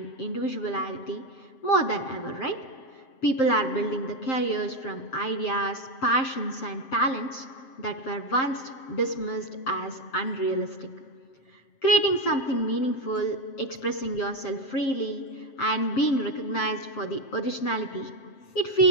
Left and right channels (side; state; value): right; late; 7.6 ms